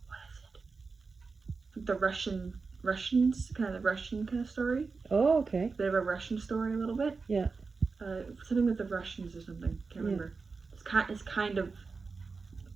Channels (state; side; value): quieter; left; 4.5 dB